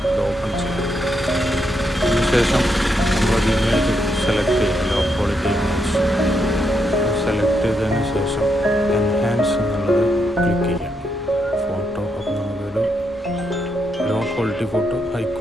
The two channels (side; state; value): both; normal; correlation 0.80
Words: ഇത് ഓപ്പൺ ചെയ്യുക. അതിനുശേഷം നമ്മളൊരു ഇമേജ് സെലക്ട് ചെയ്യുക, ലോ ക്വാളിറ്റി ഇമേജ് സെലക്ട് ചെയ്തതിന് ശേഷം എൻഹാൻസ് എന്നുള്ളത് ക്ലിക്ക് ചെയ്യുക. ഫോട്ടോ അപ്പോൾ നമുക്കൊരു low quality photo high